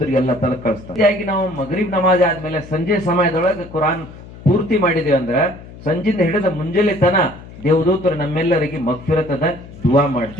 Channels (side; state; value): left; noise; hum, 17 dB below the sound